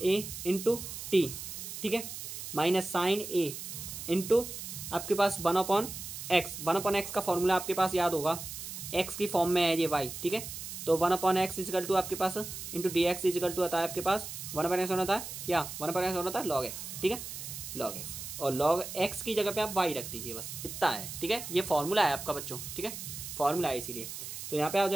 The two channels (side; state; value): right; noise; hiss, 8 dB below the sound